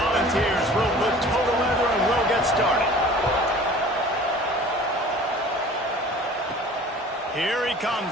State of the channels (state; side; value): normal; both; correlation 0.45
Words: will put total leather and we'll get started. Here he